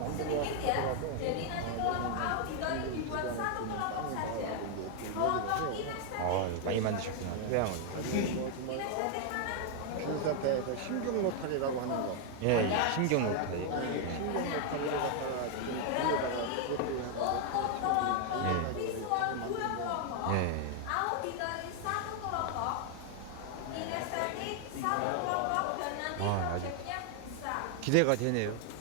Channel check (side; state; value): both; different; correlation 0.00